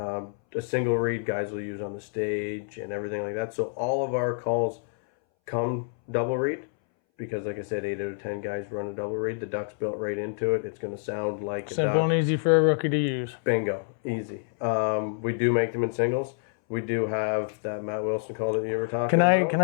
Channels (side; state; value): right; silent; 60 dB below the other